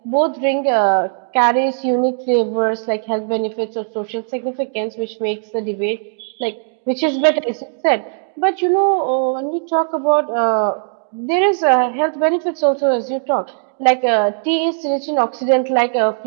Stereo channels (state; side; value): silent; left; digital silence